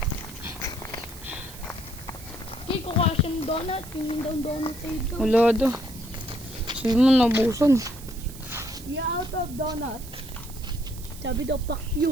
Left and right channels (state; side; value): noise; right; hiss, 16 dB below the sound